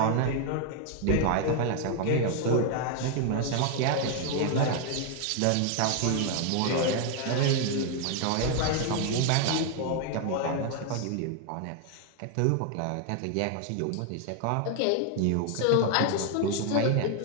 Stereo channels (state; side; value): different; both; correlation 0.00